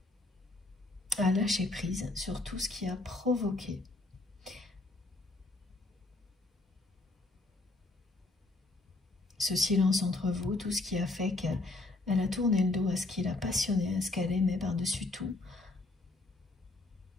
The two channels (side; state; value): right; quieter; 3.1 dB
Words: À lâcher prise sur tout ce qui a provoqué ce silence entre vous, tout ce qui a fait qu'elle a tourné le dos à ce qui la passionnait, à ce qu'elle aimait par-dessus tout,